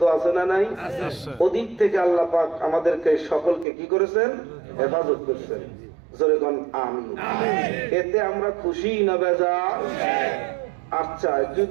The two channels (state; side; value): drops out; left; at 3.7 s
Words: আছে না নাই? ওদিক থেকে আল্লাহ পাক আমাদেরকে সকলকে কি করেছেন? হেফাজত করেছেন। জোরে কোন আমিন। এতে আমরা খুশি না বেজার? আচ্ছা,